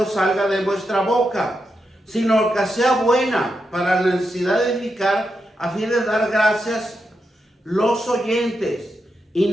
salga de vuestra boca, sino que sea buena para la necesidad de edificar, a fin de dar gracias los oyentes. Y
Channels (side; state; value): both; normal; correlation 0.85